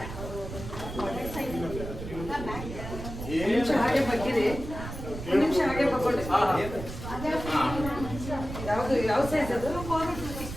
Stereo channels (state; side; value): noise; right; rumble, 9 dB below the sound